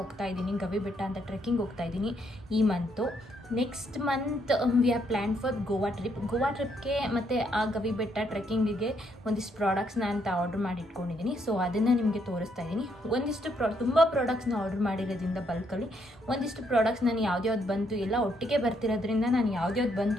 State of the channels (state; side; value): normal; both; correlation 0.73